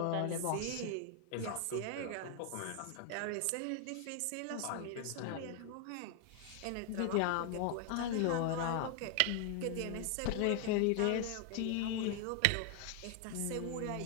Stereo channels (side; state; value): both; different; correlation 0.00